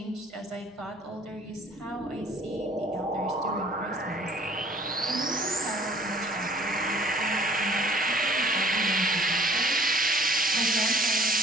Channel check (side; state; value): both; normal; correlation 0.54